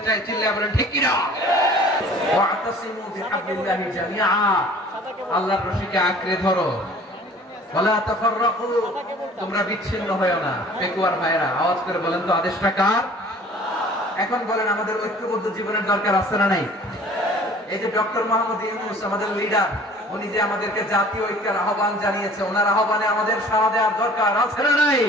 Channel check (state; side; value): normal; both; correlation 0.49